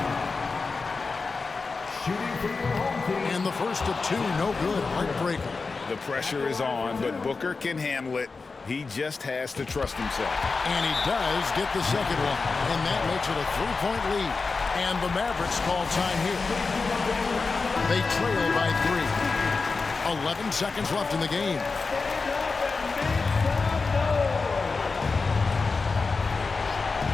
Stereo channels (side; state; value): right; quieter; 4.3 dB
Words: Shooting for your home team. And the first of 2, no good. Heartbreaker. The pressure is on, but Booker can handle it. He just has to trust himself. And he does get the second one. And that makes it a 3-point lead. And the Mavericks call time here. They trail by 3. 11 seconds left in the game.